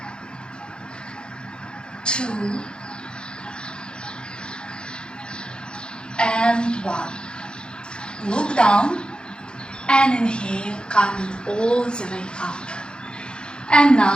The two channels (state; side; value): late; right; 0.050 ms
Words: 2, and 1. Look down and inhale, coming all the way up. And